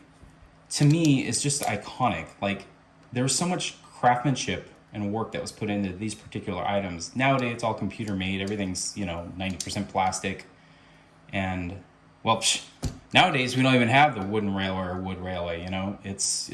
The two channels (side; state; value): both; identical; correlation 1.00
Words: to me is just iconic. Like there was so much craftsmanship and work that was put into these particular items. Nowadays it's all computer made. Everything's, you know, 90% plastic. And well, nowadays we don't even have the wooden railway or wood railway, you know, it's